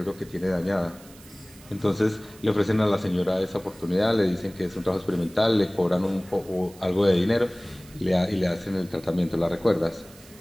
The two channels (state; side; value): noise; right; hiss, 23 dB below the sound